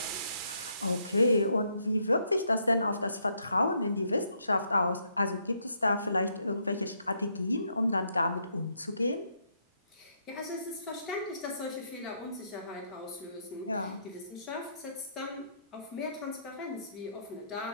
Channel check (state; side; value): inverted; both; correlation -0.74